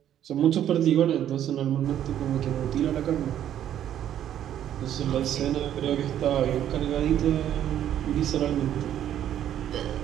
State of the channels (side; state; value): left; quieter; 10.8 dB